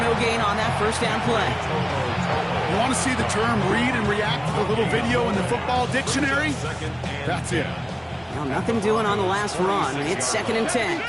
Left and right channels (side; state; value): both; identical; correlation 1.00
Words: gain on that 1st down play. You want to see the term read and react to the little video in the football dictionary? That's it. Well, nothing doing on the last run. It's 2nd and 10.